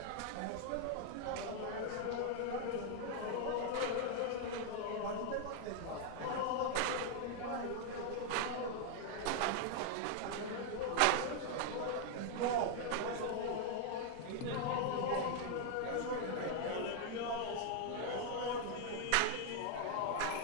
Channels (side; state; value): both; different; correlation 0.00